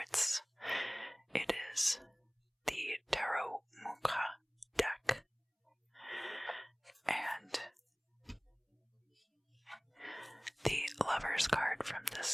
It is the Tarot Mucha deck. And the Lover's card from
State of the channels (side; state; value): both; identical; correlation 1.00